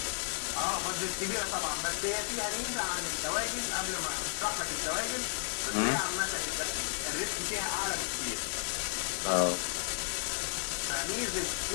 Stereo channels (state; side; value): silent; right; digital silence